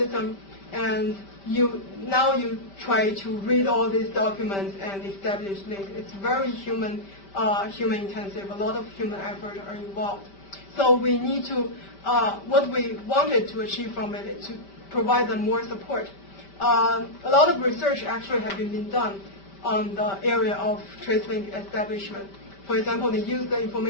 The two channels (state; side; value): late; right; 5.1 ms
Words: and now you try to read all these documents and establish links. It's very human intensive. A lot of human effort are involved. So we need to, what we wanted to achieve from it is to provide them more support. A lot of research actually have been done on the area of trace link establishment. For example, they use the